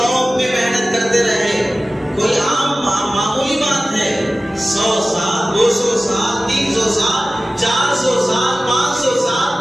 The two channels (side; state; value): both; normal; correlation 0.96